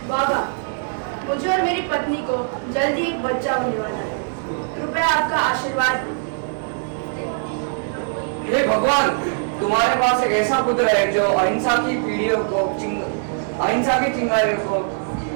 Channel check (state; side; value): silent; left; digital silence